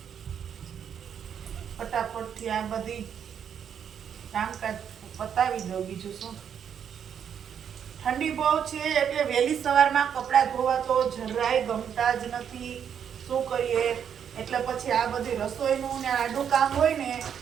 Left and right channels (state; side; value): quieter; left; 8.2 dB